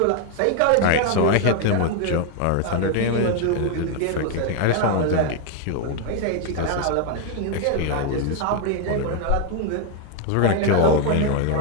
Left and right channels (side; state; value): both; different; correlation 0.01